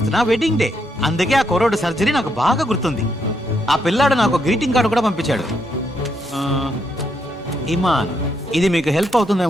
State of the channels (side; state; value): both; normal; correlation 0.77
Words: నా వెడ్డింగ్ డే. అందుకే ఆ కుర్రోడు సర్జరీ నాకు బాగా గుర్తుంది. ఆ పిల్లాడు నాకు గ్రీటింగ్ కార్డు కూడా పంపించాడు. ఇమాన్, ఇది మీకు హెల్ప్